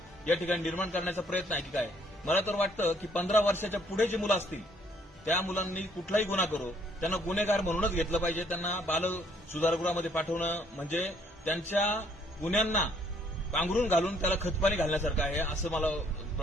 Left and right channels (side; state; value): both; normal; correlation 0.65